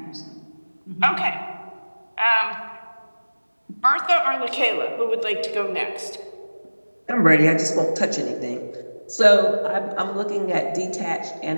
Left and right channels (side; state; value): both; inverted; correlation -1.00